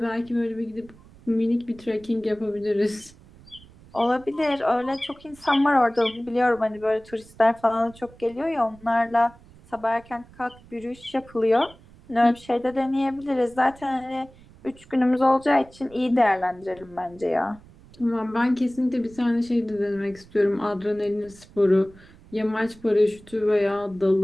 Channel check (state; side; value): noise; right; rumble, 23 dB below the sound